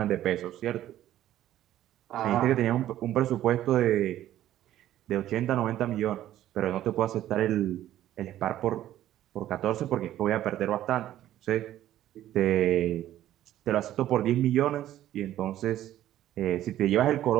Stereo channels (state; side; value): quieter; left; 12.8 dB